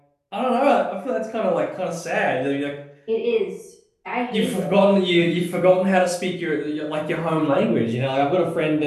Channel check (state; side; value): identical; both; correlation 1.00